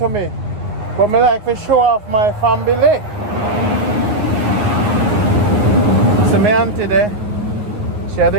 me. But I like to show off my family. So my auntie there, she had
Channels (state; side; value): late; left; 9.6 ms